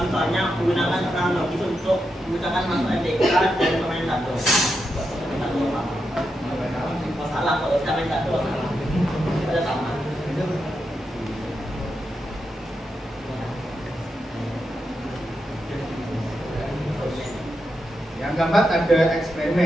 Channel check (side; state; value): both; normal; correlation 0.86